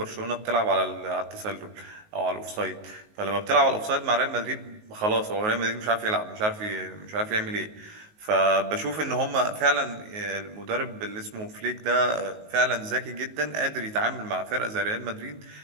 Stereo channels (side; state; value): left; late; 19 ms